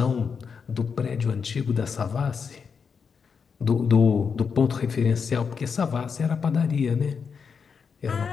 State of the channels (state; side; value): quieter; right; 6.0 dB